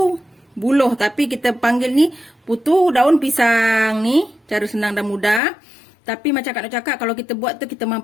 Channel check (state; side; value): drops out; right; at 5.4 s